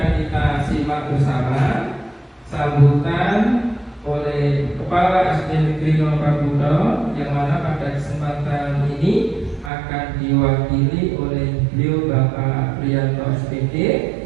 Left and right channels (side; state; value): left; drops out; at 9.7 s